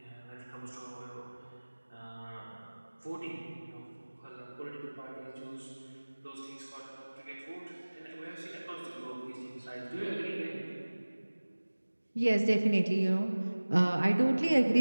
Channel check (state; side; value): inverted; both; correlation -1.00